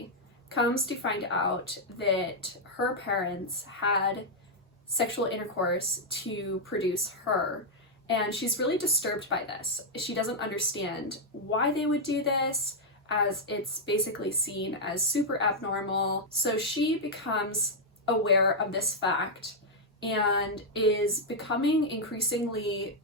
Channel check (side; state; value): both; normal; correlation -0.03